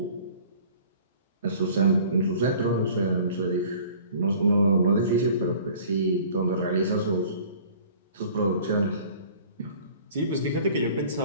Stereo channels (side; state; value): both; inverted; correlation -0.49